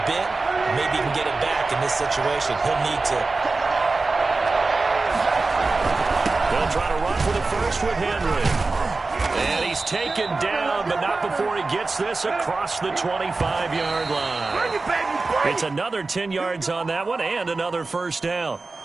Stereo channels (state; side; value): quieter; left; 3.7 dB